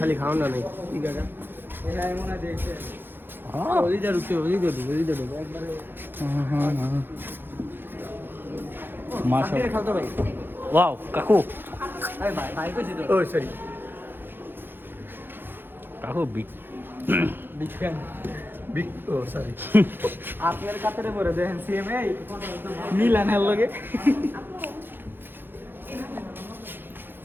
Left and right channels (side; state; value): left; late; 0.10 ms